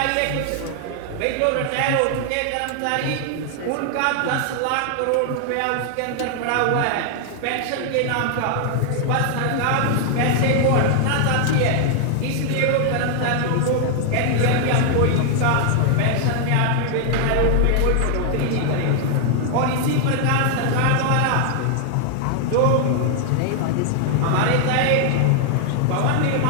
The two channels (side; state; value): both; different; correlation 0.00